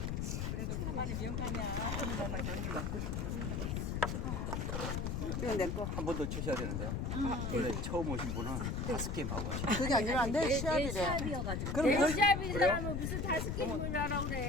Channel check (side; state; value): left; noise; rumble, 1 dB below the sound